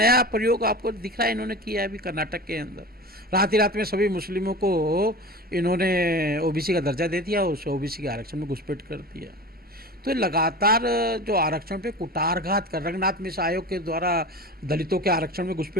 प्रयोग आपको दिख रहा है इन्होंने किया है अभी कर्नाटक के अंदर। रात ही रात में सभी मुस्लिमों को इन्होंने ओबीसी का दर्जा दे दिया, उस ओबीसी के आरक्षण में घुसपैठ कर दिया। तो लगातार जो आरक्षण पे कुठारघात कर, रंगनाथ मिश्र आयोग के द्वारा दलितों के आरक्षण में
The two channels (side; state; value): both; normal; correlation 0.33